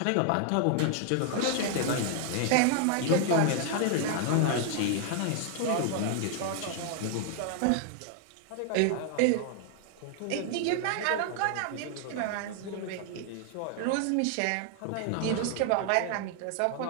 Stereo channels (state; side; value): different; both; correlation 0.00